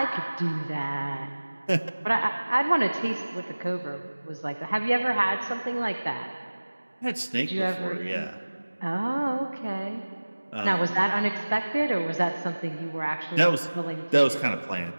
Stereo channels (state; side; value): inverted; both; correlation -1.00